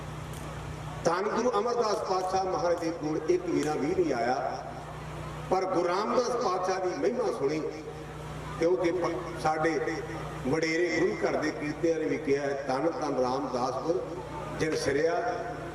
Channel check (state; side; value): identical; both; correlation 1.00